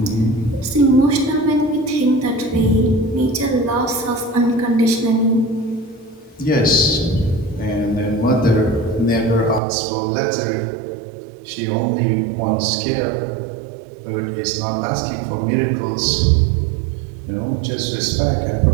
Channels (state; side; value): drops out; left; at 9.6 s